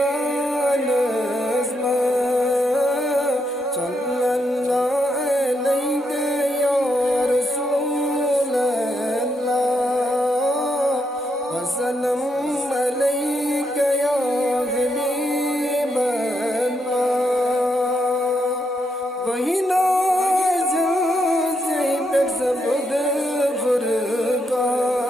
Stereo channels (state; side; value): normal; both; correlation 0.79